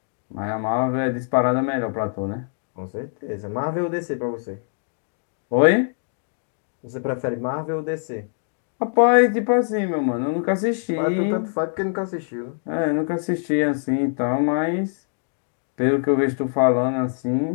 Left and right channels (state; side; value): silent; right; 63 dB below the other